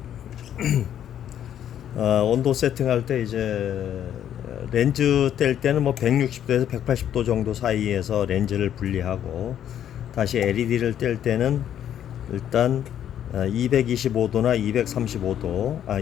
온도 세팅할 때 이제 렌즈 뗄 때는 뭐 160도에서 180도 정도 사이에서 렌즈를 분리하고, 다시 LED를 뗄 때는 일단 225도나 235도,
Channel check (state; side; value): quieter; right; 10.2 dB